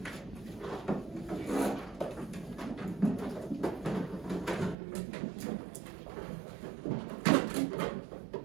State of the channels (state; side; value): drops out; left; at 4.8 s